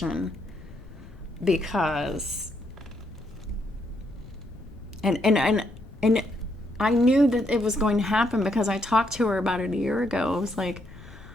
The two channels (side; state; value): left; noise; rumble, 18 dB below the sound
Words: because and I knew that it was going to happen because I talked to her about it a year ago. I was like,